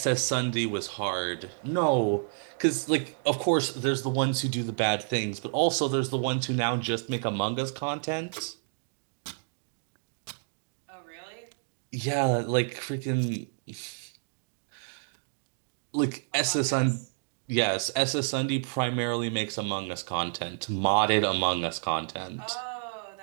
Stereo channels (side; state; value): left; silent; digital silence